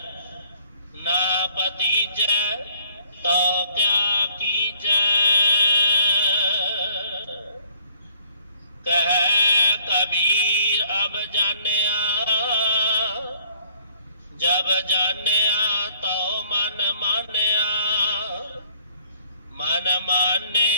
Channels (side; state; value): both; inverted; correlation -0.61